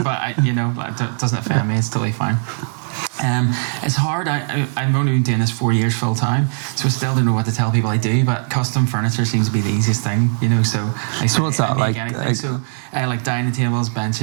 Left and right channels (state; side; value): silent; left; digital silence